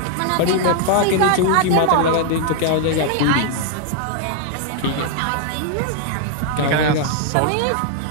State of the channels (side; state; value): both; different; correlation 0.00